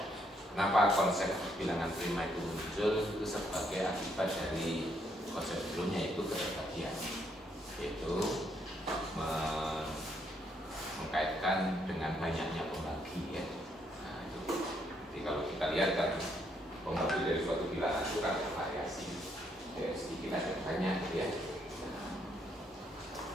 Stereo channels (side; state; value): both; normal; correlation 0.73